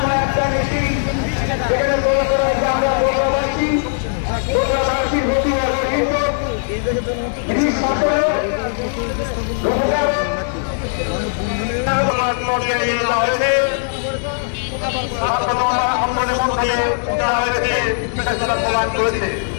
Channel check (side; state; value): right; silent; digital silence